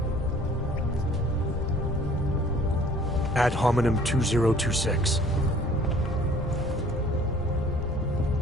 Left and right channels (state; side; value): normal; both; correlation 0.54